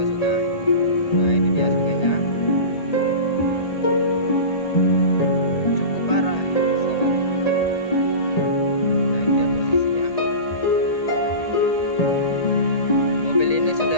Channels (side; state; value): right; late; 1.8 ms